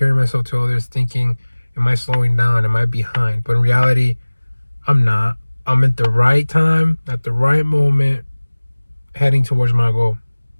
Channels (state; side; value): inverted; both; correlation -1.00